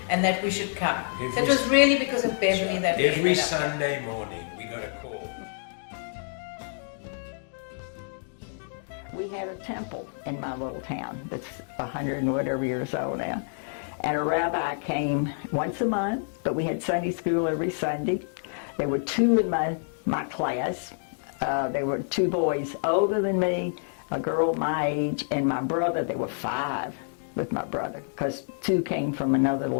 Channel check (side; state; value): right; silent; digital silence